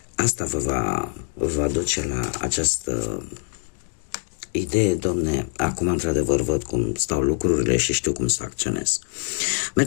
Asta vă va duce la această idee, domne, acum într-adevăr văd cum stau lucrurile și știu cum să acționez.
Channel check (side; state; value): right; silent; 63 dB below the other